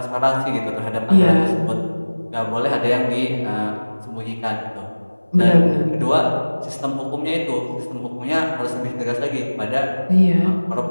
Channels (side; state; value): both; inverted; correlation -1.00